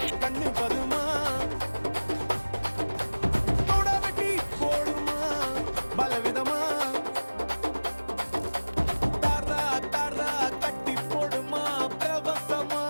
கண்ணு பதுமா தோட வெட்டி போடுமா பலவிதமா தாரா தாரா கட்டி போடுமா பிரவசமா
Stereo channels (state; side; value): inverted; both; correlation -1.00